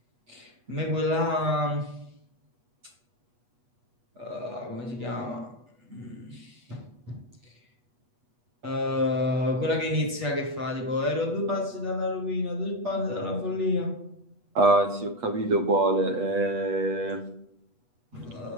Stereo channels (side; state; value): left; late; 8.2 ms